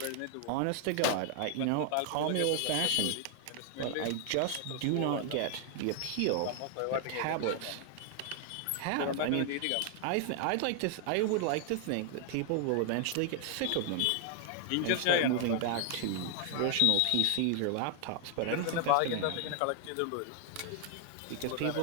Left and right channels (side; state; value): both; different; correlation 0.00